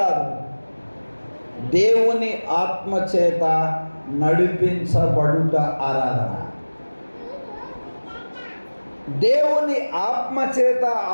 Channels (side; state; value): both; inverted; correlation -1.00